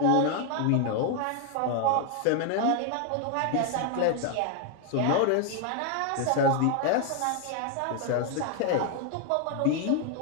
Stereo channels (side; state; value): both; different; correlation 0.00